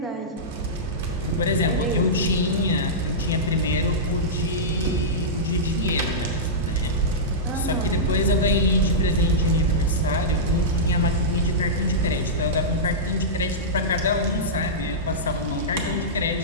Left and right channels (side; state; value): both; normal; correlation -0.13